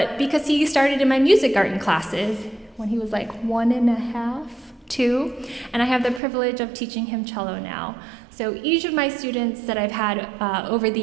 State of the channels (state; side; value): drops out; left; at 6.2 s